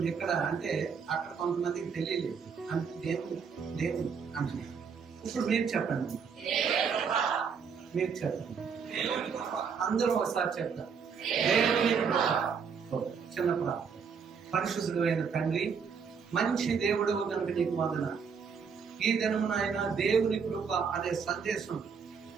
ఇక్కడ అంటే అక్కడ కొంతమందికి తెలియలేదు, అంటే దేవుడు అంటే. ఇప్పుడు మీరు చెప్పండి, మీరు చెప్పండి, అందరూ ఒకసారి చెప్తారు. దేవుని చిన్న ప్రార్థన. పరిశుద్ధుడు అయిన తండ్రి, మంచి దేవుడు కనుక నీకు వందనాలు. ఈ దినమున ఆయన దేవుని కృప అనే సందేశం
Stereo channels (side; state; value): left; quieter; 6.2 dB